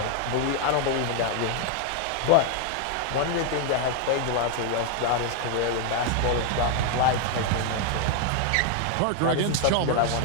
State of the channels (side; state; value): both; different; correlation 0.01